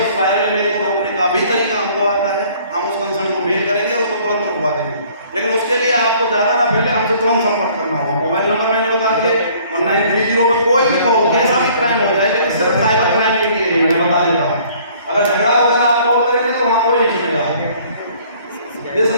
उस वायरल इमेज को रोकने का भी तरीका हमको आता है। हम उस कंसर्न को मेल करेंगे और उसको तुरंत रुकवा देंगे। लेकिन उसके लिए आपको ज़्यादा ना पहले हमसे तुरंत संपर्क करना होगा। मोबाइल नंबर मैंने बता दिए 1930 पर कोई भी कॉल, कैसा भी क्राइम हो जाए, लेकिन सिर्फ साइबर क्राइम के लिए मैं बता देता हूँ। अगर झगड़ा वगैरह आप कॉल करेंगे तो वहाँ कोई नहीं सुनेगा। इस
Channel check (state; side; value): inverted; both; correlation -0.57